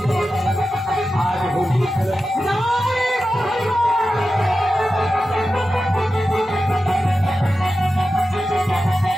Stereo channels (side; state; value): both; normal; correlation 0.92